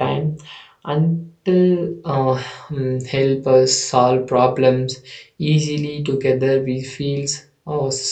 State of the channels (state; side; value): identical; both; correlation 1.00